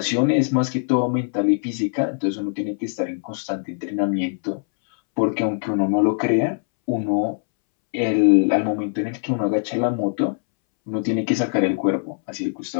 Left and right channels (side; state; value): right; silent; 64 dB below the other